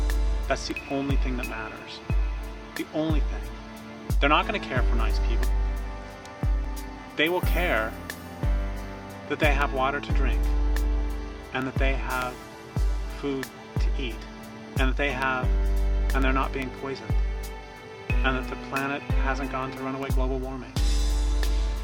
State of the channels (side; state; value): both; identical; correlation 1.00